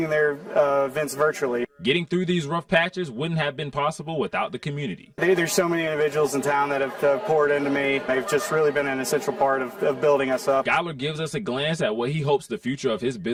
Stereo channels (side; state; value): both; identical; correlation 1.00